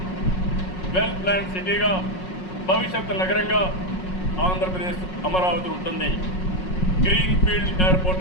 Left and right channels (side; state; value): right; late; 5.5 ms